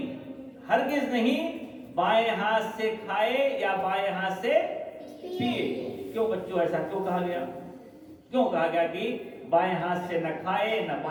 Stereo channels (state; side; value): identical; both; correlation 1.00